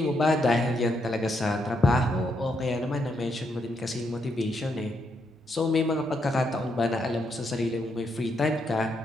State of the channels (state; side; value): normal; both; correlation 0.78